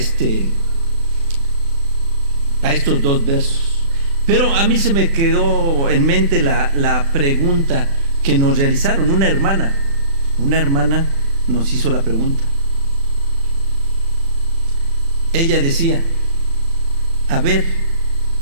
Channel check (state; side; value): late; left; 36 ms